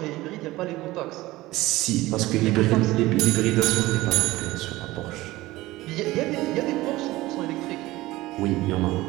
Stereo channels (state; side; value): quieter; left; 18.3 dB